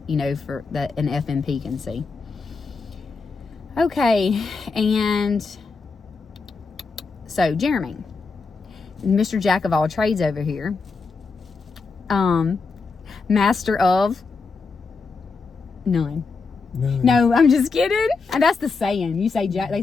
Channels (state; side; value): quieter; right; 4.5 dB